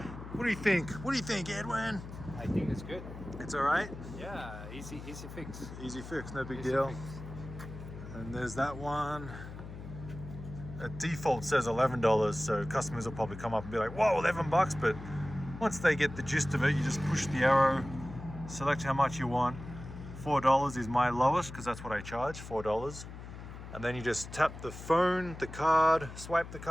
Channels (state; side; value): noise; left; hum, 12 dB below the sound